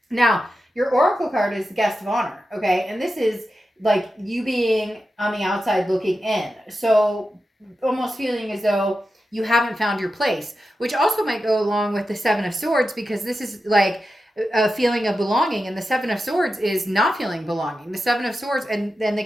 Now, your oracle card is the guest of honor, okay? And this is like you being on the outside looking in. So almost feeling as though you haven't found your place, which also might go along with the 7 of Swords because this is like a feeling of belonging, and the 7 of Swords is not feeling belonging. The 7 of Swords and then the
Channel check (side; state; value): both; normal; correlation 0.91